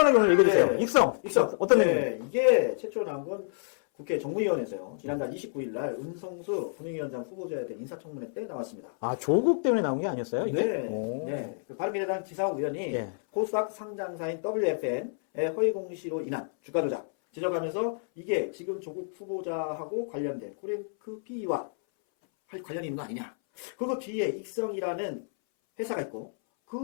오늘 얘기해주세요. 익성. 어떤 네, 이게 최초로 나온 건 국회 정무위원회에서요. 지난달 29일 날 은성수 금융위원장 후보자에 대한 인사청문회 때 나왔습니다. 아, 조국 때문에 나온 게 아니었어요? 네, 네. 그 바른미래당 지상욱 의원이 네. 코스닥 상장사인 WFM의 허위 공시로 인한 주가 조작 지적하면서 이게 지금 조국 후보자하고 관련된 코랭크 PE와 관련이 있는 거 아니냐. 그거 뒤에 익성이라는 회사가 있고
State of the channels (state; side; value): silent; right; 58 dB below the other